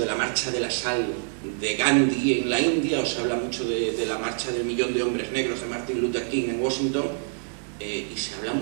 la marcha de la sal de Gandhi en la India, o se habla mucho de la marcha del 1.000.000 de hombres negros de Martin Luther King en Washington, y se habla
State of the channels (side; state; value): left; silent; digital silence